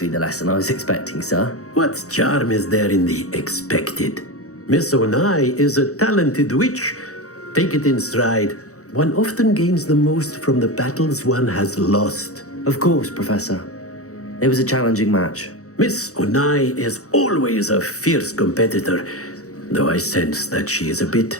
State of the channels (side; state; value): right; late; 0.65 ms